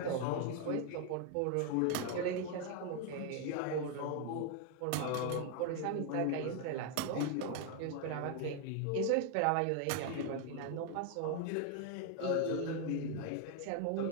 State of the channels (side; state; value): both; different; correlation 0.00